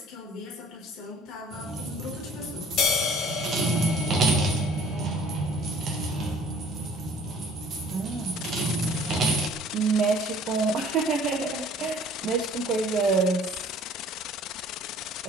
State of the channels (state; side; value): normal; both; correlation 0.53